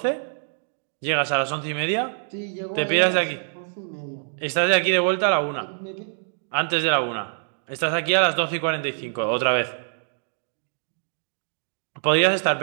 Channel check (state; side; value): silent; left; digital silence